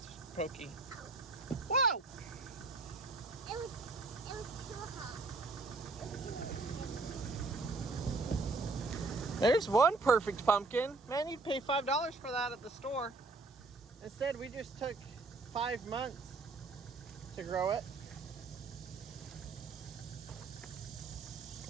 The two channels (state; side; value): quieter; left; 3.5 dB